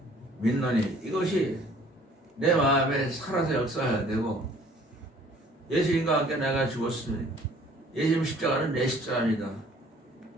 믿노니 이것이 내 마음에 살아서 역사해야 되고, 예수님과 함께 내가 죽었으니 예수님 십자가는 내 십자가입니다.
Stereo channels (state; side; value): normal; both; correlation 0.55